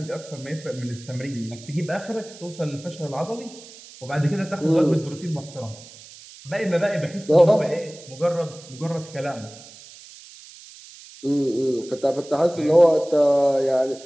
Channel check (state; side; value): noise; right; hiss, 19 dB below the sound